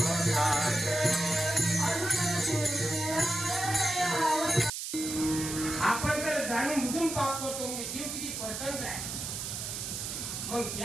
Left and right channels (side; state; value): right; noise; hiss, 5 dB below the sound